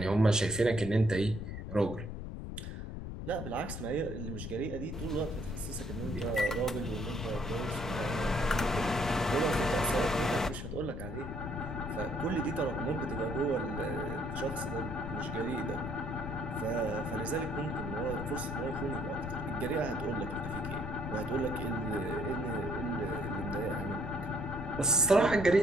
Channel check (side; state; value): left; noise; rumble, 7 dB below the sound